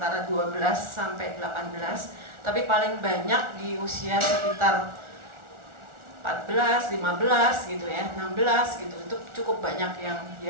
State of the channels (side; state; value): left; late; 1.4 ms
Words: 12 sampai 18, tapi paling banyak di usia sekitar 14, 15 gitu ya, 16 gitu. Itu cukup banyak